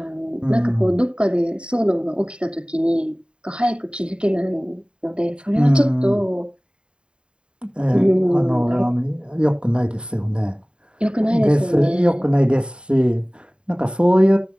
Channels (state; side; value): late; left; 0.052 ms